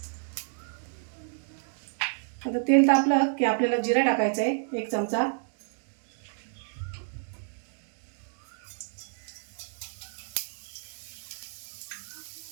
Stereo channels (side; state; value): left; silent; digital silence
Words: आता तेल तापलं की आपल्याला जिरा टाकायचं आहे 1 चमचा.